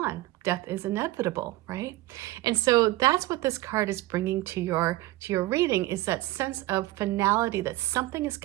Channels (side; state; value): left; quieter; 17.7 dB